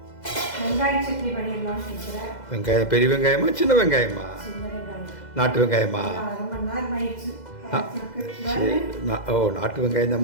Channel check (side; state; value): right; late; 2.0 ms